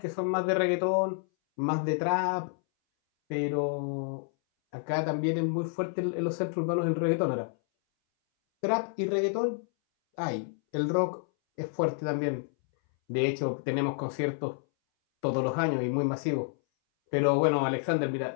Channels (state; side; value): silent; right; 58 dB below the other